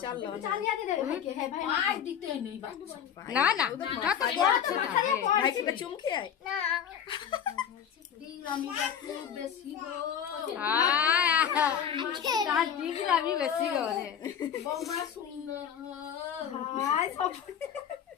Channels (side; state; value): right; quieter; 8.7 dB